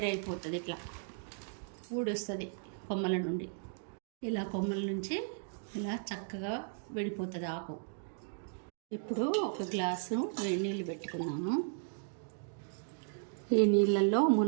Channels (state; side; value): silent; left; digital silence